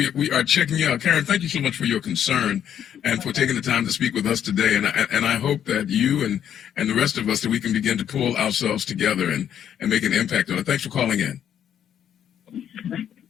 we are checking you out. Karen, thank you so much for your concern and for taking the time to speak with us today. And I hope that you and the rest of us, that we can begin to pull ourselves together and make an impact on it. Thanks for calling in.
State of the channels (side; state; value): right; quieter; 9.5 dB